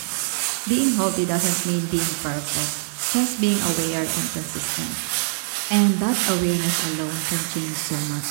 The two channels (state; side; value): silent; left; digital silence